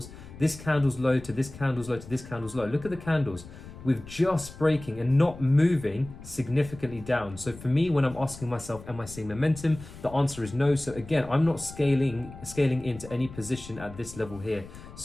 this candle's low to this candle's low to this candle's low. Look at the candles. We're just breaking and not moving significantly down. So for me, when I'm asking myself, am I seeing momentum? The answer is no. So again, I'm not scaling into any position at this level here.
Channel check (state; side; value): noise; left; rumble, 16 dB below the sound